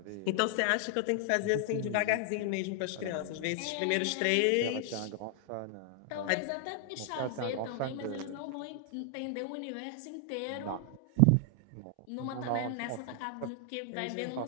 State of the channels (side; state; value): both; different; correlation 0.00